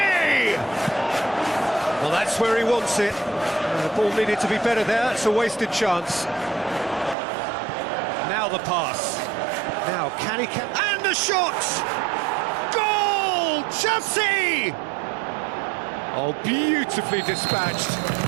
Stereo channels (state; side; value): drops out; left; at 7.2 s